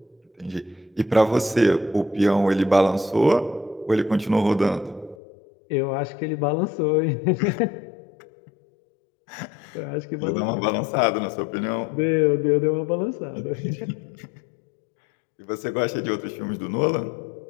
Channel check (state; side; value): drops out; right; at 5.2 s